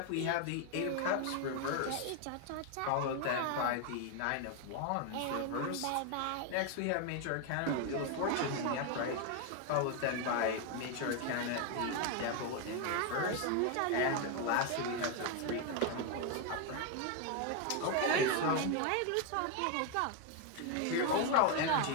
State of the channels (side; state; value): both; different; correlation 0.01